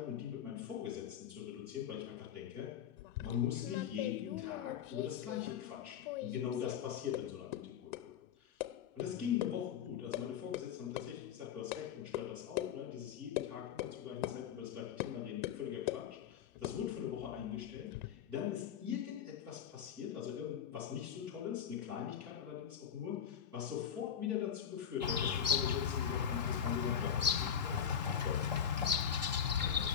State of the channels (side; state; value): right; quieter; 8.6 dB